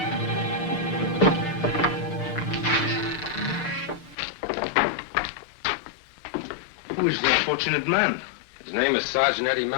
Who is the unfortunate man? His name is Sergeant Eddie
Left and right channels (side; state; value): right; drops out; at 4.2 s